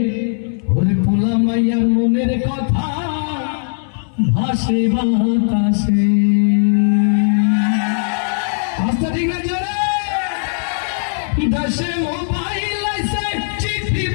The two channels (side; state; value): right; silent; 61 dB below the other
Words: ওরে পোলা মাইয়ার মনের কথা ভাসে বাতাসে। আস্তে ঠিক না জোরে? দেশে মোবাইল আইছে, চিঠি